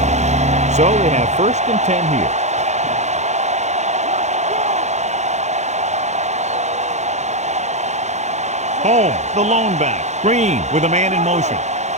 So they have 1st and 10 here. Home, the lone back. Green with a man in motion.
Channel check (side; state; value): left; late; 0.33 ms